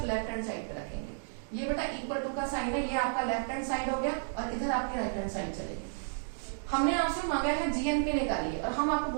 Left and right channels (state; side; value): silent; left; digital silence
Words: लेफ्ट हैंड साइड पे रखेंगे। ये बेटा इक्वल टू का साइन है, ये आपका लेफ्ट हैंड साइड हो गया और इधर आपकी राइट हैंड साइड चलेगी। हमने आपसे मांगा है GNP निकालिए और हम आपको